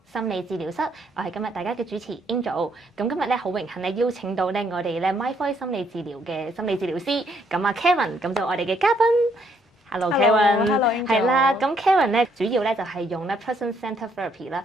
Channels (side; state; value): both; normal; correlation 0.70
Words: 心理治療室，我係今日大家嘅主持 Angel。咁今日咧好榮幸咧邀請到咧我哋咧 My Voice 心理治療嘅心理治療師，咁啊 Karen，咁就我哋嘅嘉賓。Hello Karen，係啦，咁 Karen 咧主要咧就係用咧 person-centered therapy 啦，